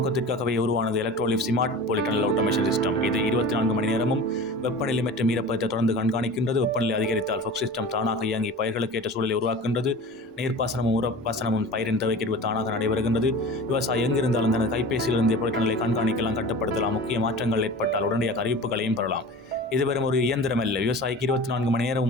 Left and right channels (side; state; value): both; normal; correlation 0.36